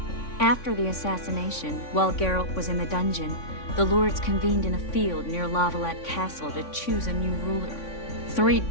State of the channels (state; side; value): late; right; 3.6 ms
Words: After the assassination, while Geralt was in the dungeon, the lords convened in a field near Lavalette Castle to choose a new ruler. 3